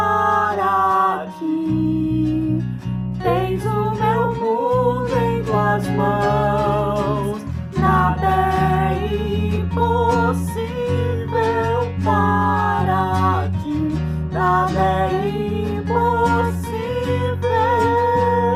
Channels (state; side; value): identical; both; correlation 1.00